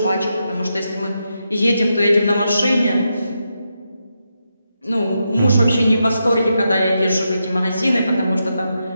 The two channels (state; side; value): inverted; both; correlation -0.85